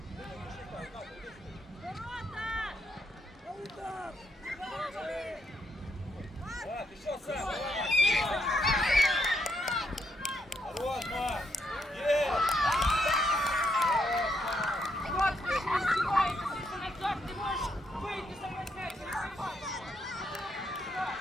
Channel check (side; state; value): both; normal; correlation 0.77